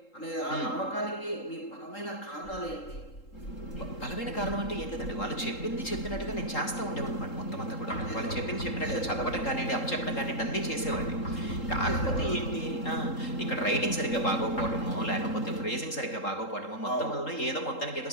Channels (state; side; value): late; right; 3.8 ms